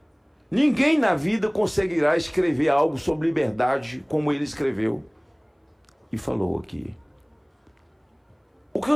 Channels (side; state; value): both; identical; correlation 1.00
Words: Ninguém na vida conseguirá escrever algo sobre liberdade como ele escreveu e falou aqui. O que